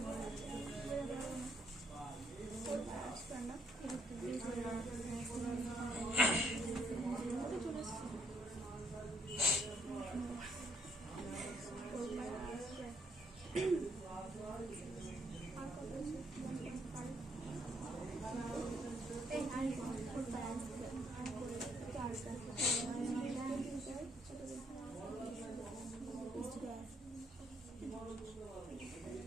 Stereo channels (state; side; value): normal; both; correlation 0.70